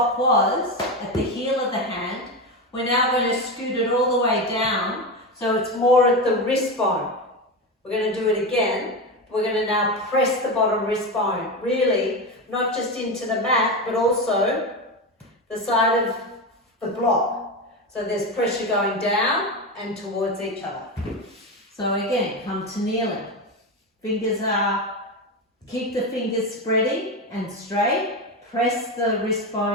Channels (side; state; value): both; normal; correlation 0.17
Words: was, at the heel of the hand, we're now going to scoot it all the way down, so it's more at the wrist bone. We're going to do it again. We're going to now press the bottom wrist bone, really, not just into the mat, but also the side of the block. So there's pressure going down and towards each other. So again, come to kneeling. Keep the fingers spreading and straight. Press the wrist